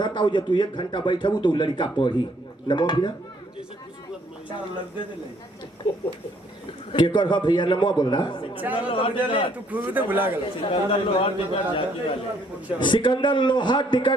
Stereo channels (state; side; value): normal; both; correlation 0.66